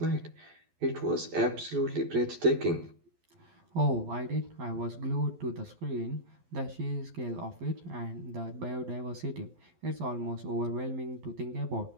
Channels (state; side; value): late; left; 12 ms